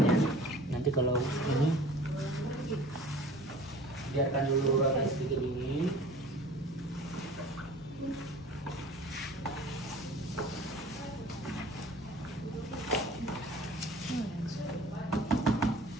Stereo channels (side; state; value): both; normal; correlation 0.45